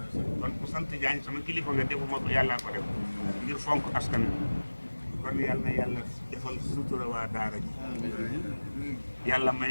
kon ku sant Jaañ sama kilifa nga defuma ko yàllaa ko def ngir fonk askan wi kon yàlla na yàlla defal sutura waa daara ji yàlla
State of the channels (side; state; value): both; inverted; correlation -1.00